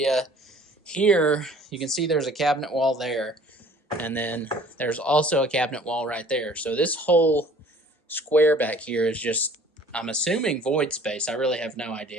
Here you can see there's a cabinet wall there, and then there's also a cabinet wall right there. So this whole square back here is just, I'm assuming, void space. I really have no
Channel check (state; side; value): normal; both; correlation 0.51